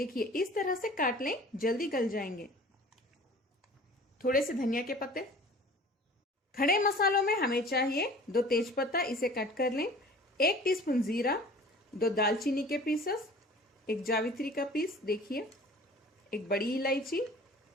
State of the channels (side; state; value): both; normal; correlation 0.45